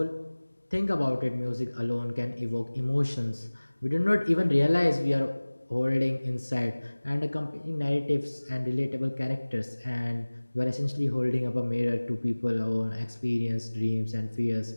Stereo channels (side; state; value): both; inverted; correlation -1.00